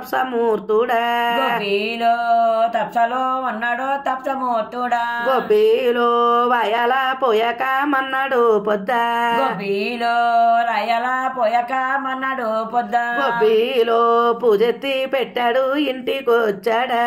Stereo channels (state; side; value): identical; both; correlation 1.00